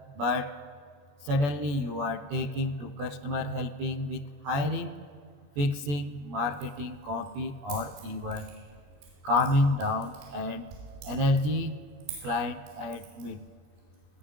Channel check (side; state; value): left; late; 21 ms